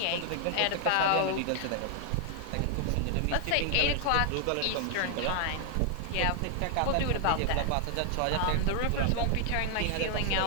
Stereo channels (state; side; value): different; both; correlation 0.00